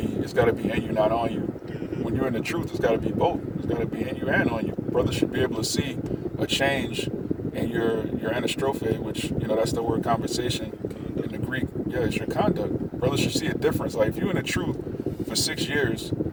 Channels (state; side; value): identical; both; correlation 1.00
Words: be in you, not on you. When you're in the truth, it's got to be both. It's got to be in you and on you. Brothers should be able to see a change in your anastrophe, which, that's the word conversation in the Greek. Yeah, it's your conduct. Brothers should see a difference. Like, if you're in the truth for 6 years